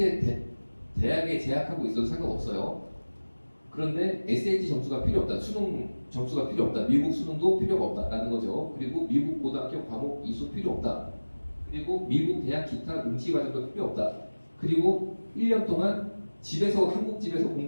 대학에 재학하고 있어도 상관없어요. 그런데 SAT 점수가 필요 없다. 수능 점수가 필요 없다. 미국 수능도 필요가 없다라는 거죠. 그리고 미국 고등학교 과목 이수 필요 없다. 그리고 미국 대학 기타 응시 과정도 필요 없다. 그리고 1년 동안 집에서 한국 집에서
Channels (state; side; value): inverted; both; correlation -1.00